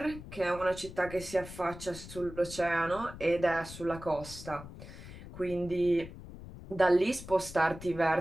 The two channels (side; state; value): left; noise; rumble, 14 dB below the sound